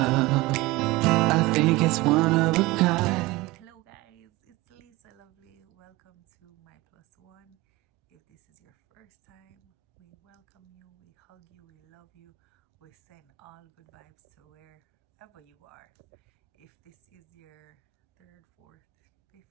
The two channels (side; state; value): left; quieter; 20.8 dB